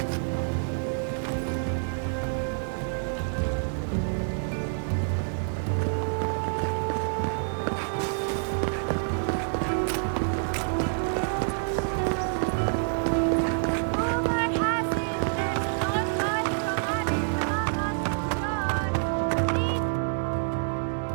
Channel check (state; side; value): silent; left; 60 dB below the other